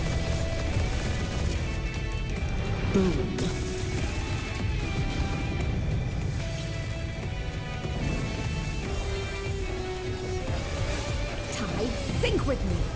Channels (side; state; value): both; identical; correlation 1.00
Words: Boom. Tide, think with me.